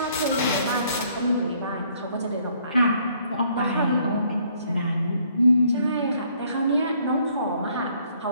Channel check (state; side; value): inverted; both; correlation -0.65